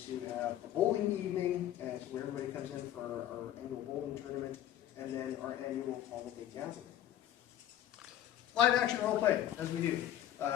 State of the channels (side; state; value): right; quieter; 12.0 dB